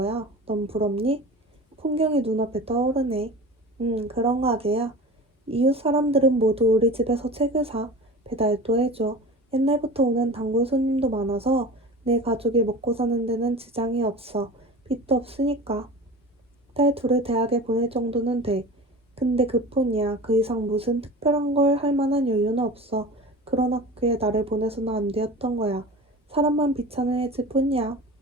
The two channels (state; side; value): normal; both; correlation 0.35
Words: 넌 부럽니? 풍경이 눈앞에 떠오르네. 그런 가게야. 이웃 사람들은 모두 우리 집에서 책을 사. 배달도 해줘. 옛날부터 오는 단골 손님도 많아서 내 가족이 먹고 사는 데는 지장이 없어. 빚도 없으니까. 딸 둘을 대학에 보낼 정도는 돼. 근데 그뿐이야. 그 이상 무슨 특별한 걸 할 만한 여유는 없어. 그런 학교에 나를 보내서는 안 되었던 거야. 사람만 비참해질 뿐이야.